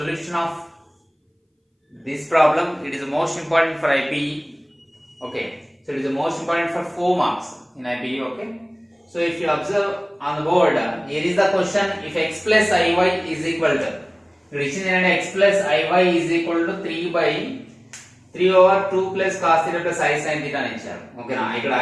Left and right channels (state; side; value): identical; both; correlation 1.00